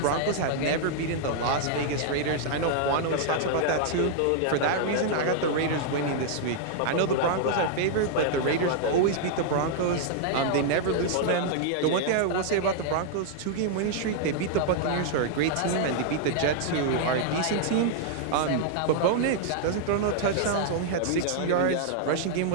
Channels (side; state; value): both; different; correlation -0.01